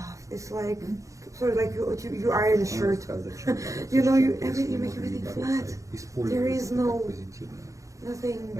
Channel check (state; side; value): late; left; 0.15 ms